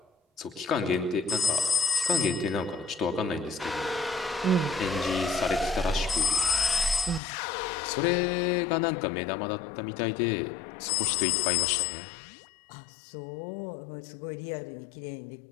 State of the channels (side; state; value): right; drops out; at 7.2 s